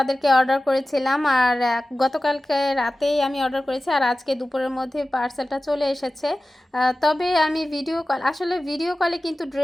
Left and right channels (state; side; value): normal; both; correlation 0.96